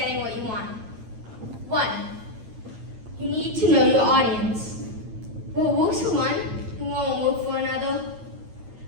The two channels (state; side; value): late; left; 9.2 ms